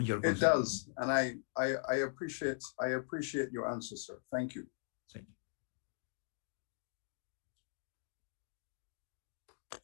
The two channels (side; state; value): right; silent; digital silence